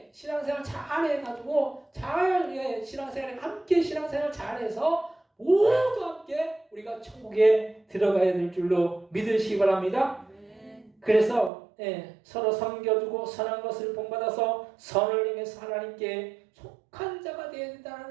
신앙생활 잘 해가지고 신앙생활에 함께 신앙생활 잘해서 모두 함께 우리가 천국에 들어가야 될 줄로 믿으시기 바랍니다. 그래서 서로 섬겨주고 선한 것을 본받아서 선을 행해서 하나님께 속한 자가 되어야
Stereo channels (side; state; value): left; drops out; at 11.5 s